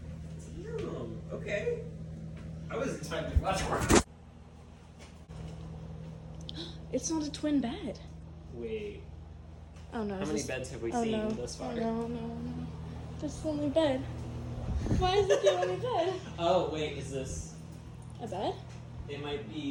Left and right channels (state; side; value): identical; both; correlation 1.00